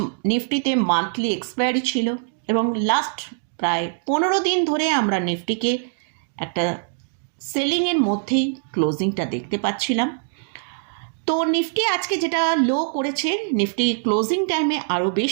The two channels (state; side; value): silent; left; digital silence